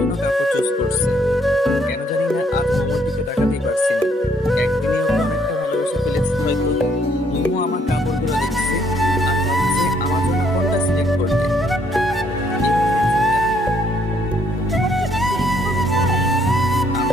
কাপড় চুজ করছে। কেন জানি না আজ মোমোর দিকে তাকাতেই পারছি না। একদিনে ওকে অনেকটা ভালোবেসে ফেলেছি হয়তো। মোমো আমার কাপড়গুলো দেখছে আর ভাবছে আমার জন্য কোনটা সিলেক্ট করবে। এভাবে দেখছেন কেন? তোমাকে সিলেক্ট করবে তাই?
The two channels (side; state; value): both; normal; correlation 0.68